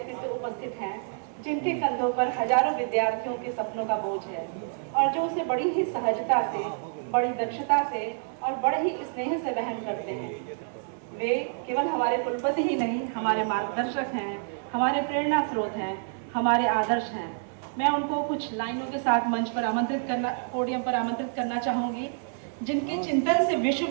उपस्थित हैं जिनके कंधों पर हजारों विद्यार्थियों के सपनों का बोझ है और जो उसे बड़ी ही सहजता से, बड़ी दक्षता से और बड़े ही स्नेह से वहन करते हैं। वे केवल हमारे कुलपति ही नहीं, हमारे मार्गदर्शक हैं, हमारे प्रेरणा स्रोत हैं, हमारे आदर्श हैं। मैं उनको कुछ लाइनों के साथ मंच पर पोडियम पर आमंत्रित करना चाहूँगी। जिनके चिंतन से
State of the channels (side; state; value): left; silent; 57 dB below the other